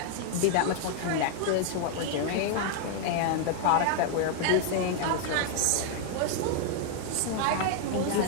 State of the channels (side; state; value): both; different; correlation 0.00